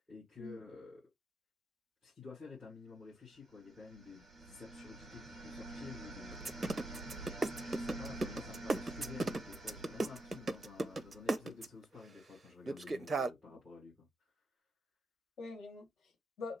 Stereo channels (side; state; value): both; normal; correlation 0.83